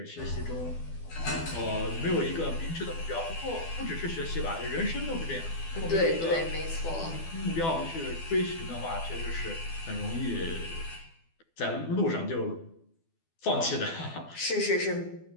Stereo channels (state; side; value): late; right; 12 ms